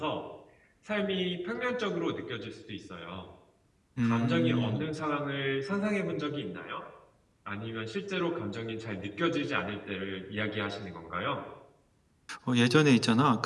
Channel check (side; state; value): both; identical; correlation 1.00